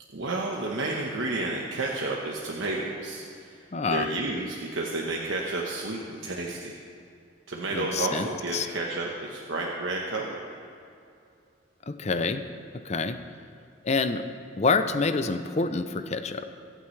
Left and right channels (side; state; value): both; normal; correlation 0.12